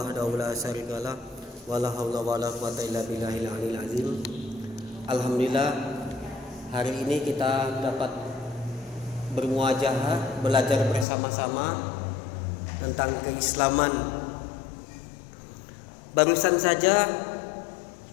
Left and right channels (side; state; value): right; drops out; at 11.1 s